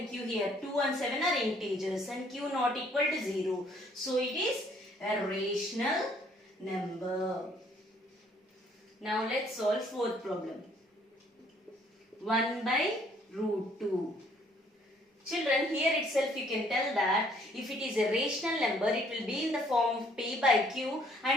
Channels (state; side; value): normal; both; correlation 0.63